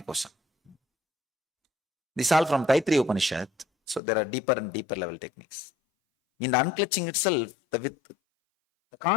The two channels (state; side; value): drops out; right; at 4.0 s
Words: kosha. This is all from Taittiriya Upanishad. So there are deeper and deeper level techniques. In the unclutching itself, the